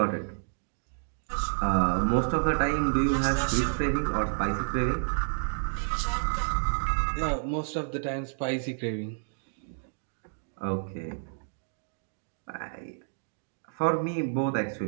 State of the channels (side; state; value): left; silent; digital silence